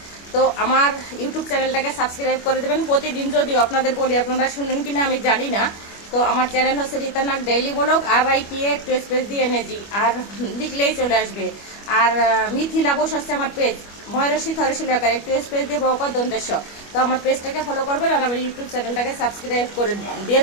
তো আমার ইউটিউব চ্যানেলটাকে সাবস্ক্রাইব করে দেবেন। প্রতিদিন যদিও আপনাদের বলি, আপনারা শুনেন কিনা আমি জানি না। তো আমার চ্যানেল হচ্ছে রীতা নাগ ডেইলি ব্লগ, RITA একটু স্পেস দিয়ে এনেছি, আর লিখলেই চলে আসবে। আর মিথিলা বোস হচ্ছে আমার পেজ, ময়ূরশী থরশী লেখার একটু স্পেস দিয়ে বকা দন্তেশ। তো আমার পেজটাকে ফলো করবেন আর আমার ইউটিউব চ্যানেলটাকে সাবস্ক্রাইব করে দিয়ে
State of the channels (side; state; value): right; late; 25 ms